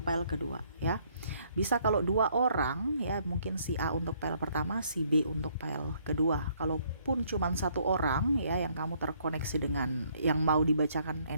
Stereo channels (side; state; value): both; inverted; correlation -0.66